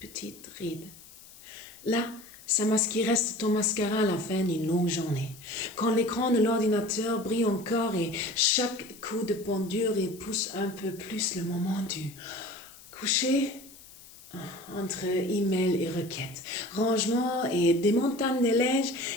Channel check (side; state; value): left; noise; hiss, 20 dB below the sound